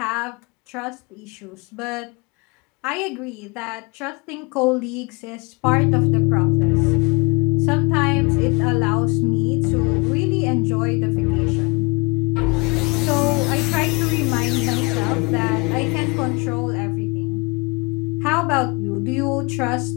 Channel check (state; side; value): quieter; right; 29.3 dB